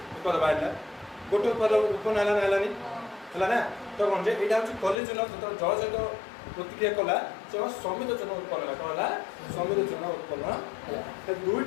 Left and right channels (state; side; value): drops out; right; at 5.0 s